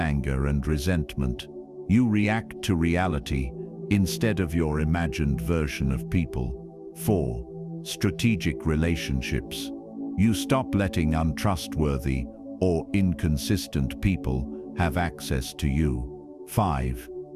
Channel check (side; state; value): both; identical; correlation 1.00